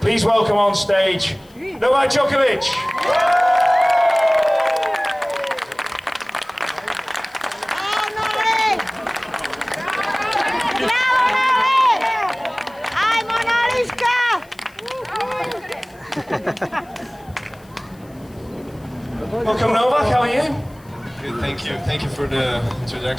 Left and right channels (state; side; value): noise; left; hiss, 29 dB below the sound